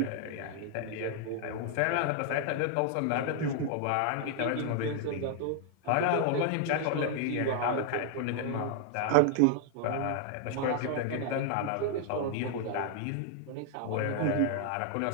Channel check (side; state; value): both; different; correlation 0.00